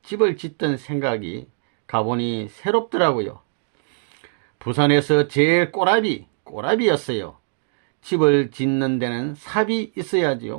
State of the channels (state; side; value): silent; left; digital silence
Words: 집을 짓던 생각이 가보니 새롭더라고요. 부산에서 제일 꼬라비였어요. 집을 짓는 데는 삽이